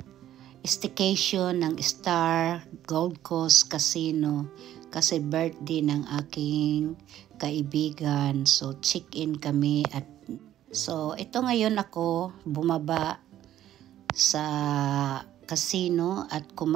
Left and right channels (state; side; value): quieter; left; 12.2 dB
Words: staycation ng Star Gold Coast Casino kasi birthday ng aking kaibigan. So check-in kami at so ito ngayon ako bumaba sa casino at